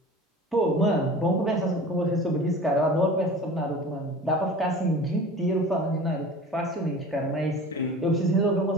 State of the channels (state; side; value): normal; both; correlation 0.39